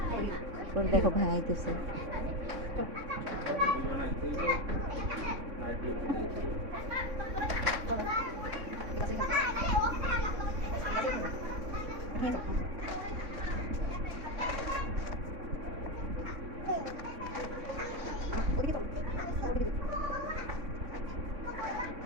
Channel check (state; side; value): late; left; 3.6 ms